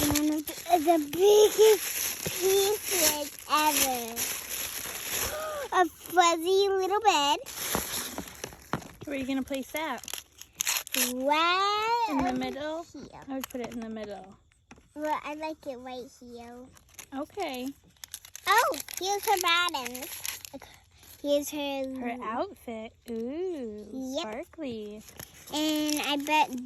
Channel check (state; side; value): identical; both; correlation 1.00